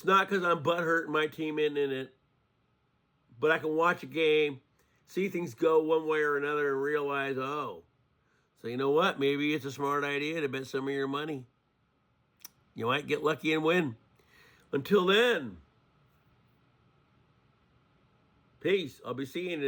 not because I'm butthurt and my team isn't in it, but I can watch a game, see things go one way or another, and realize, oh, so you know what? Maybe it's a smart idea to bet some of your money. You might get lucky and win. Until then, peace. I'll be seeing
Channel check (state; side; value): identical; both; correlation 1.00